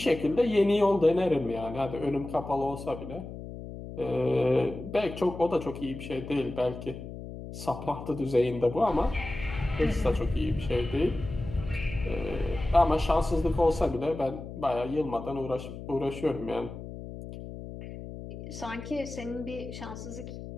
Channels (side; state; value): left; noise; hum, 11 dB below the sound